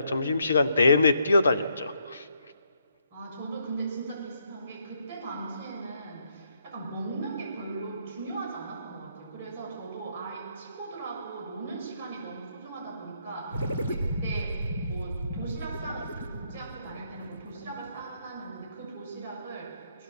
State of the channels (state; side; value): inverted; both; correlation -0.74